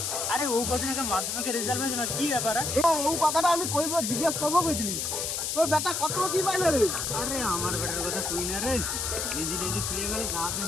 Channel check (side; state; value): left; noise; hiss, 1 dB below the sound